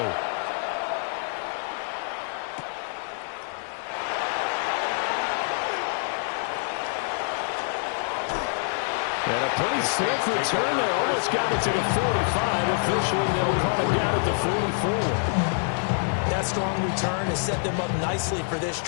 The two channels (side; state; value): right; silent; 61 dB below the other